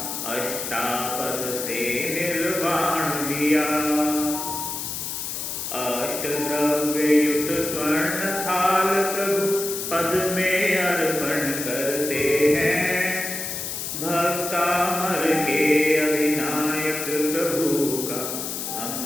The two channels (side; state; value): left; noise; hiss, 5 dB below the sound